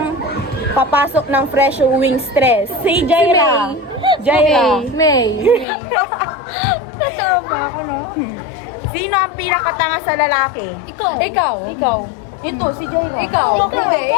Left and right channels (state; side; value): drops out; right; at 5.7 s